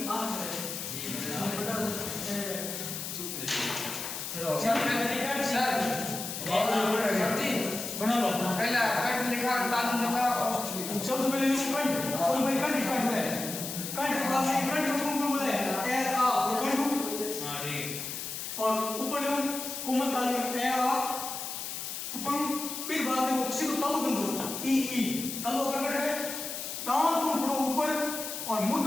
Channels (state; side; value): noise; left; hiss, 6 dB below the sound